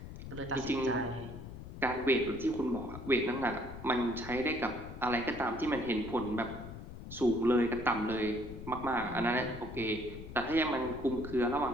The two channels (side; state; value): left; noise; rumble, 11 dB below the sound